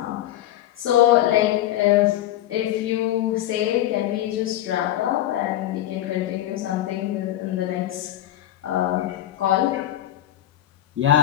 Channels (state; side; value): quieter; right; 13.3 dB